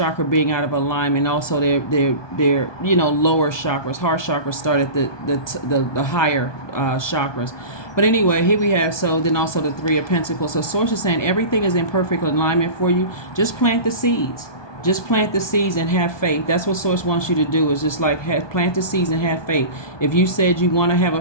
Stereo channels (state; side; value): late; right; 1.2 ms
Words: being out of alignment, also their lower chakras. Heart chakra started the higher chakras. But anyway, here we have, so then also the 3 of Pentacles. So source is saying everything is in perfect alignment for you. Just plant the seeds. Just plant the seeds and have faith. That's what source wants you to do, is just like plant the seeds and have faith. If you said you want to have